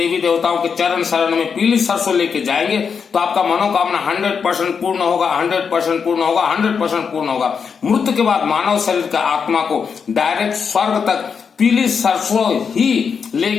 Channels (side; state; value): right; quieter; 6.2 dB